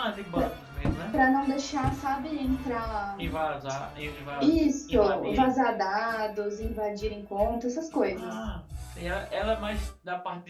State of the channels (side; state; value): both; identical; correlation 1.00